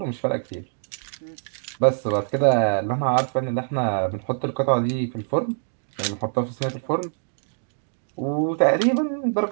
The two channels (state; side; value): silent; left; digital silence